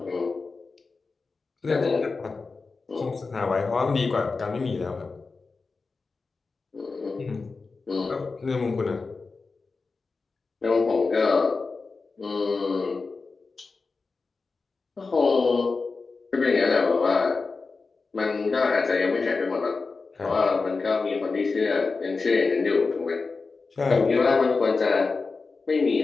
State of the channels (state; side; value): quieter; right; 4.2 dB